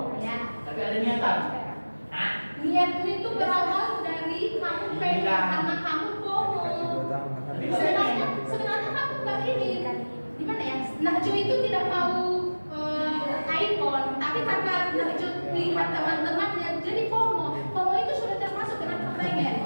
Ya. tapi ada niatan. Niatmu itu berawal dari kamu pengen karena kamu FOMO. Sebenarnya kamu nggak ini gimana ya? Najwa itu tidak mau iPhone, tapi karena Najwa lihat teman-temannya jadi FOMO. FOMO itu sudah termasuk dengan kepengen.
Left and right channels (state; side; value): inverted; both; correlation -1.00